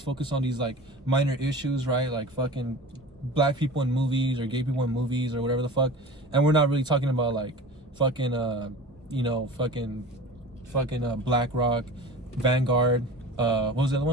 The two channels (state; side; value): normal; both; correlation 0.36